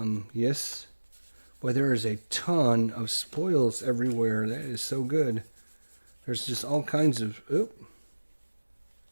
Yes. Boy, there is a ton of spoils everywhere. That is so good. There's just all kinds of...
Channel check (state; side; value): inverted; both; correlation -1.00